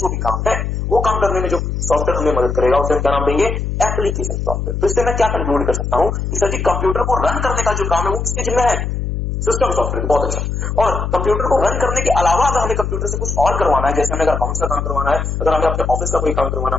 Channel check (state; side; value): noise; left; hum, 2 dB below the sound